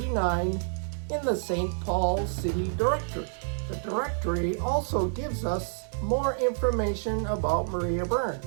in the St. Paul City Directory. The directory also gives us more information about Maria Burns.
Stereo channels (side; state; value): left; silent; digital silence